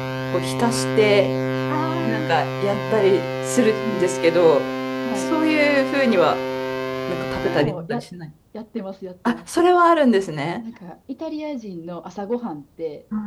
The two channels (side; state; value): both; identical; correlation 1.00